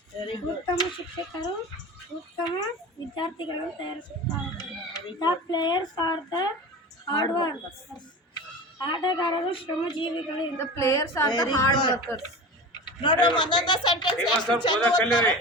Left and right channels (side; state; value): both; normal; correlation 0.31